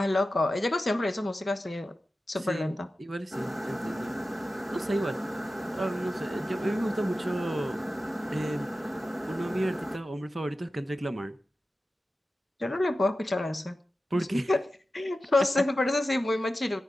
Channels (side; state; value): both; normal; correlation 0.94